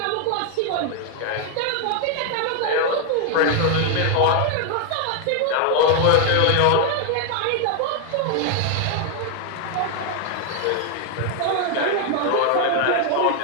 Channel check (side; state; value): both; different; correlation 0.00